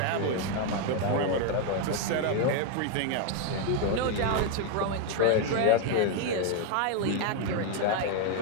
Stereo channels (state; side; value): different; both; correlation 0.01